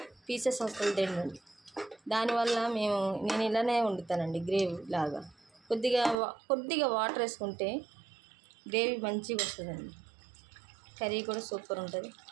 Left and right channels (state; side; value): drops out; left; at 6.2 s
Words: పీసెస్ అసలు తినండి. దానివల్ల నేను ఇలానే వండుతానండి, గ్రేవీ లాగా. కొద్దిగా వాటర్ వేసుకుంటే గ్రేవీ మంచిగా వస్తుందండి. కర్రీ కూడా సూపర్ ఉంటుంది.